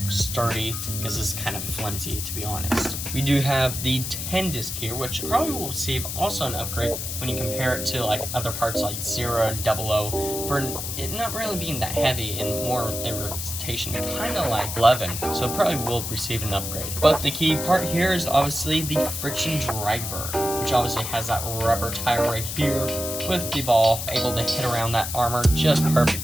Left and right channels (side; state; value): left; noise; hiss, 5 dB below the sound